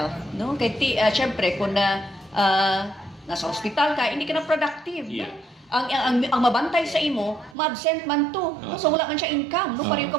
no kay syempre kung nasa ospital ka hindi ka na productive no? Ang mabantay sa imo ma-absent man to no so wala man siya income no pareho ka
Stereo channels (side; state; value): left; drops out; at 7.6 s